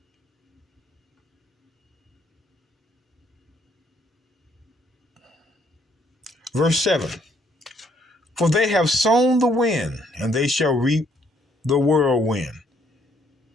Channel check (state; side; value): normal; both; correlation 0.68